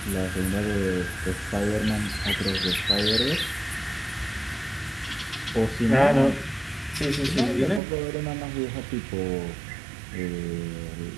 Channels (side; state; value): left; drops out; at 7.8 s